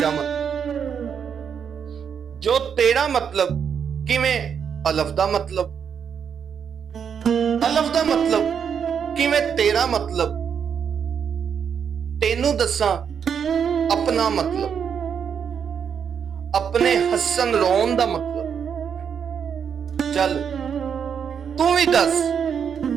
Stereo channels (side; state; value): left; quieter; 7.4 dB